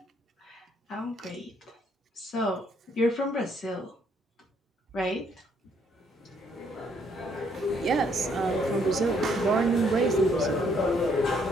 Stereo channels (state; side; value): normal; both; correlation 0.68